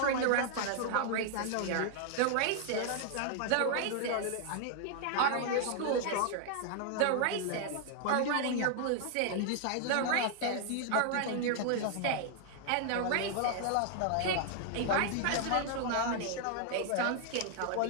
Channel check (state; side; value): different; both; correlation 0.00